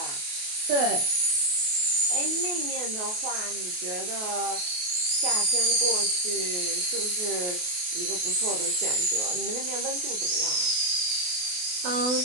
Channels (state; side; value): late; left; 28 ms